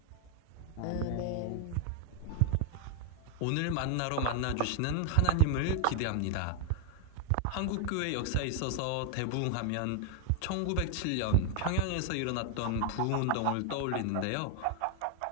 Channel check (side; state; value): both; different; correlation 0.00